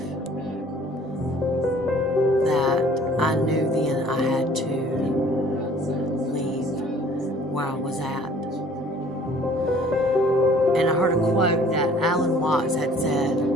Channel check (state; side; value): normal; both; correlation 0.54